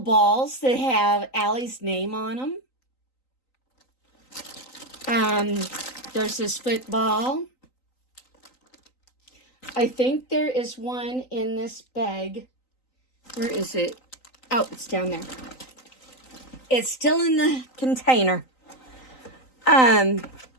that have Allie's name on them. There's this football. I think there is one in this bag. Where is it? Oh, it's down there. It's still in the container.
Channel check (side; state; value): right; late; 3.9 ms